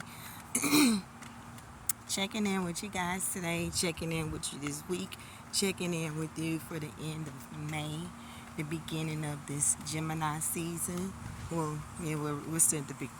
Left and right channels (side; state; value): both; identical; correlation 1.00